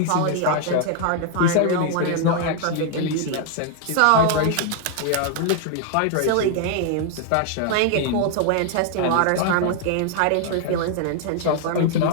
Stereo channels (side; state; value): both; different; correlation 0.00